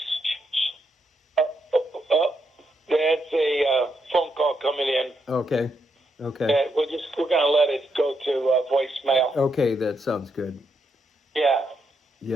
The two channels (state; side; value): normal; both; correlation 0.80